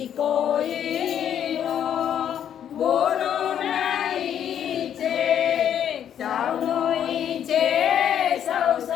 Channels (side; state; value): right; quieter; 9.5 dB